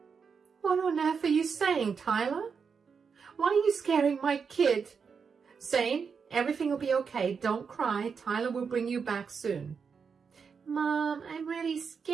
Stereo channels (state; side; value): quieter; left; 5.9 dB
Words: What on earth are you saying, Tyler? Why are you scaring my kid? Zane, everything will be okay. Don't cry. Tyler will bring you back soon. Mom, I'm really